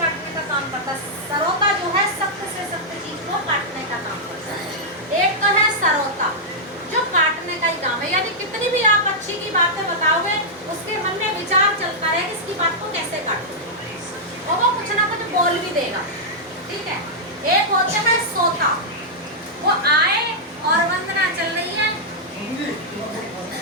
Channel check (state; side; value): normal; both; correlation -0.08